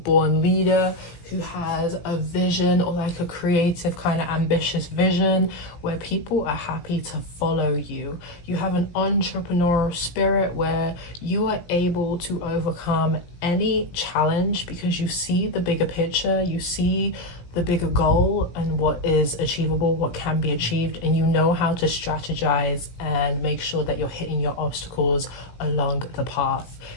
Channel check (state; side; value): late; right; 17 ms